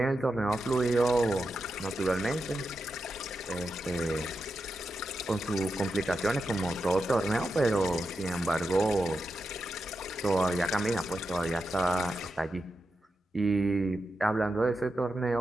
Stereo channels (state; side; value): normal; both; correlation 0.88